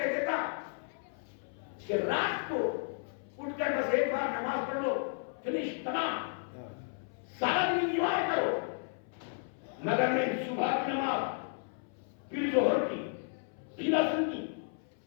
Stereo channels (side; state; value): right; silent; 55 dB below the other